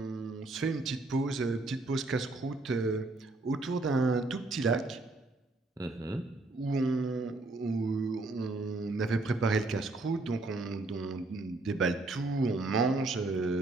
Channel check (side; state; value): left; quieter; 3.1 dB